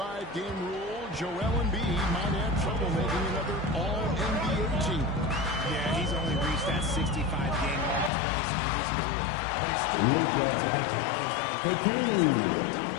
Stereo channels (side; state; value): right; drops out; at 8.1 s